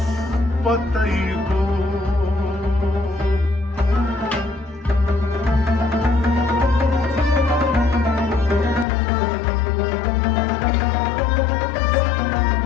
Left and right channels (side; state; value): right; drops out; at 8.8 s